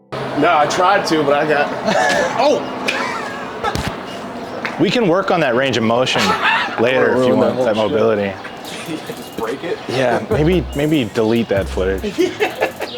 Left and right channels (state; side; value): identical; both; correlation 1.00